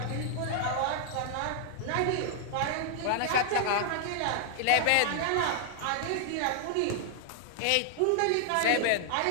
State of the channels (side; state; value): both; different; correlation -0.01